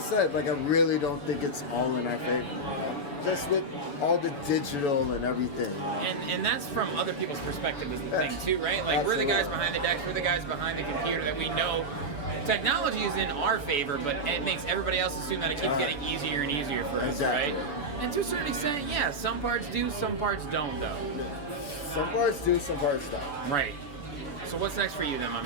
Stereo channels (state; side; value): late; right; 7.0 ms